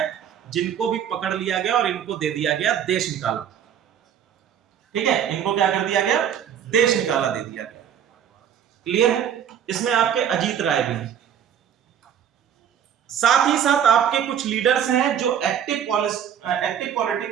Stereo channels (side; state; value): left; quieter; 9.0 dB